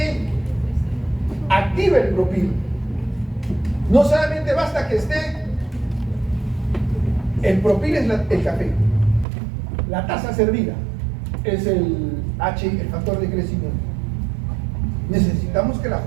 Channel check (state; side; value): drops out; left; at 9.2 s